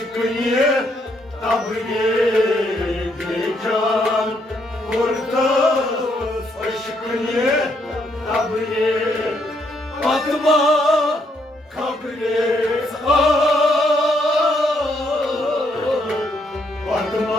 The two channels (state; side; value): normal; both; correlation 0.73